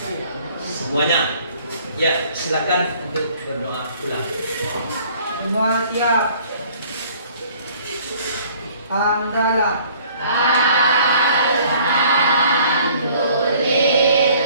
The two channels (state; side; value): inverted; both; correlation -0.56